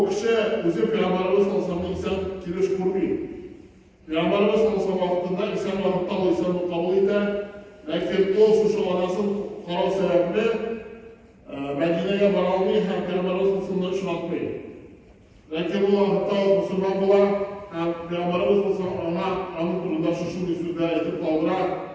kishi o'zi Peygamberimiz sallallohu alayhi vasallam inson kelish ko'rmaydi. Peygamberimiz sallallohu alayhi vasallam vaqtida inson vaqtda insonni qabul etdi. Lekin o shu onasi qaror sababli Madinaga bora olmay ham Peygamberimiz sallallohu alayhi vasallam ishlatmaydi. Lekin bu vaqtda musulmon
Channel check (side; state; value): both; identical; correlation 1.00